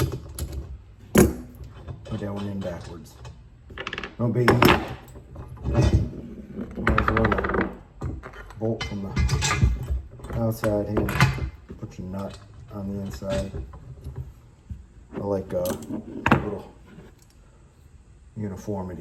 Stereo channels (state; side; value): identical; both; correlation 1.00